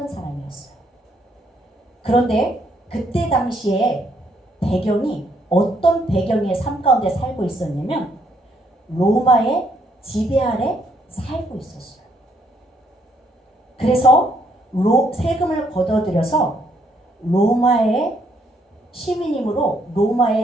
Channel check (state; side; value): normal; both; correlation 0.71